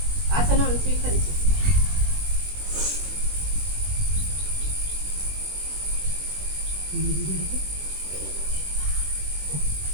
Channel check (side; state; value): left; late; 21 ms